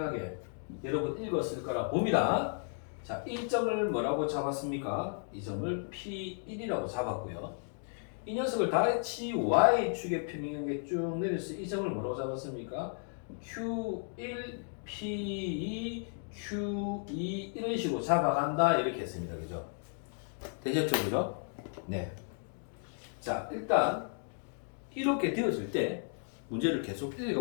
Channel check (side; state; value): right; silent; 55 dB below the other